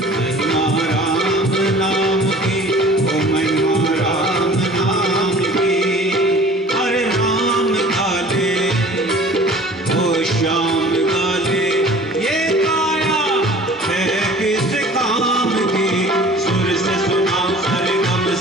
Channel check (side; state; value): both; normal; correlation 0.46